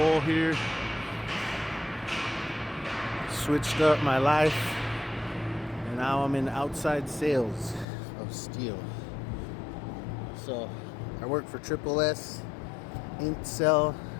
here. Switched up my life, and now I'm in outside sales of steel. So I work for Triple S, Cell,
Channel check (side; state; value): right; drops out; at 7.9 s